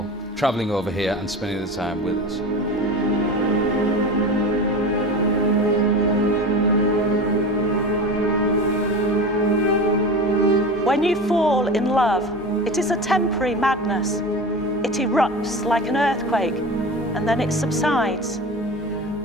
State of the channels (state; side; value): normal; both; correlation 0.30